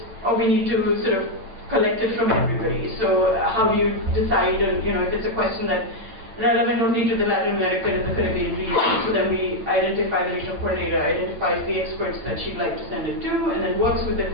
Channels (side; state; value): left; late; 8.9 ms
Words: or we need to sort of collect it from everybody. So how do you decide on, if it's a question that relevant only to the Latin American and the Caribbean region. So then we identify, the regional coordinator identifies the experts that she'd like to send it to, and then works with the